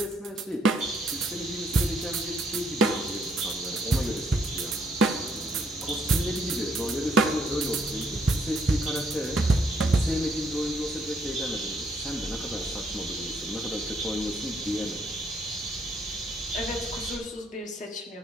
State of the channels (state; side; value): normal; both; correlation 0.70